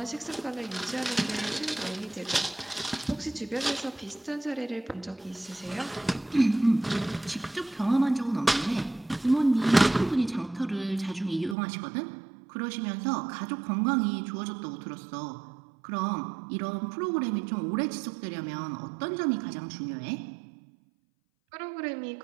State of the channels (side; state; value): left; drops out; at 11.6 s